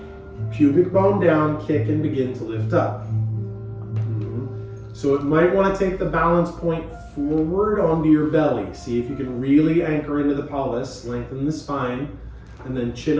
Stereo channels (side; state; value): both; identical; correlation 1.00